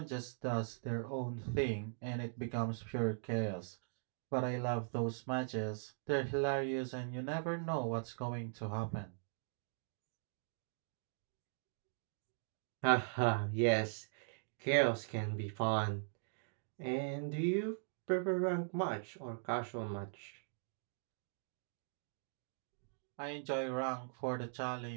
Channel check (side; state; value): left; silent; digital silence